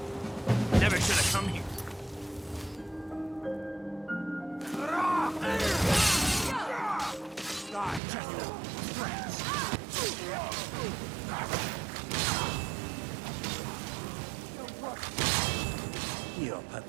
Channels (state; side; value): drops out; left; at 8.0 s